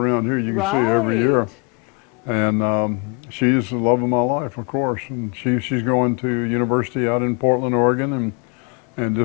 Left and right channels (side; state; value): right; quieter; 31.2 dB